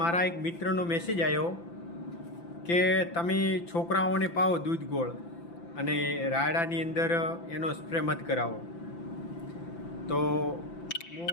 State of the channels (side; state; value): right; late; 5.9 ms